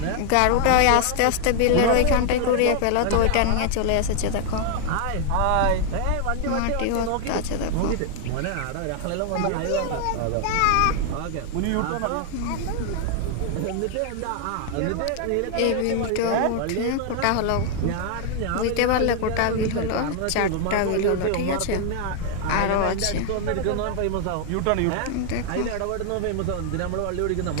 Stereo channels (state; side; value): different; both; correlation 0.00